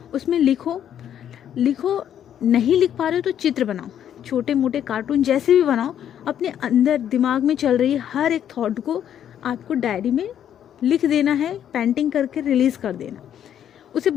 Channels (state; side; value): quieter; right; 9.9 dB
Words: उसमें लिखो, नहीं लिख पा रहे हो तो चित्र बनाओ, छोटे मोटे कार्टून जैसे भी बनाओ, अपने अंदर दिमाग में चल रही हर एक थॉट को आपको डायरी में लिख देना है, पेंटिंग करके रिलीज़ कर देना। उसे